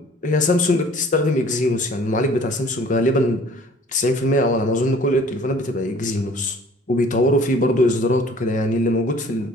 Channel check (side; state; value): both; normal; correlation 0.52